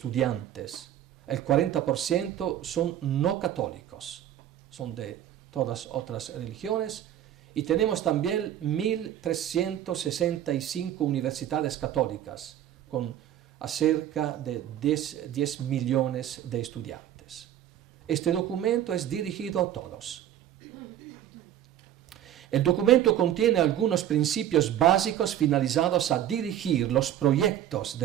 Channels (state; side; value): quieter; left; 11.4 dB